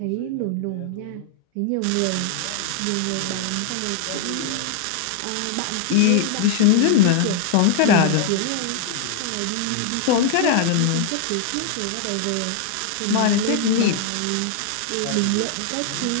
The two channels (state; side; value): different; both; correlation 0.00